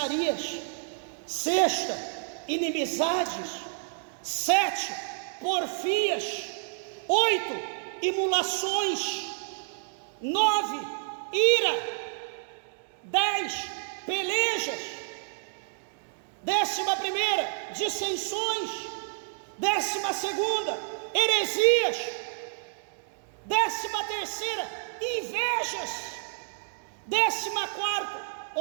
Sexta, inimizades. 7, porfias. 8, imulações. 9, ira. 10, pelejas. 11ª, dissensões. 12ª, heresias. 13ª, invejas. 14º,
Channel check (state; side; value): silent; left; digital silence